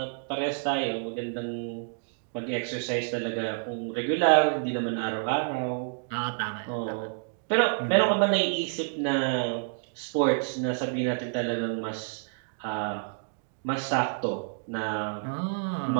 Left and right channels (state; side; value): silent; left; digital silence